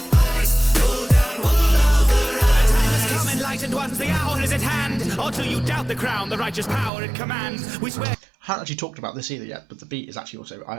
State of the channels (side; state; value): left; drops out; at 6.9 s